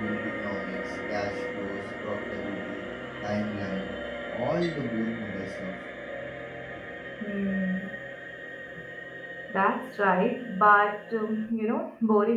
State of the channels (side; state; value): both; identical; correlation 1.00